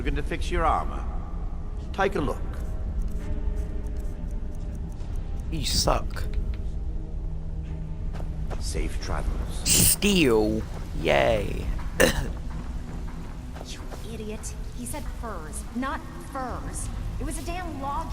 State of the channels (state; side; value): identical; both; correlation 1.00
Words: Looking to fix your armor? Take a look. You suck. Safe travels. Steel. Yay. You idiot. He said furs, not furs. It was a damn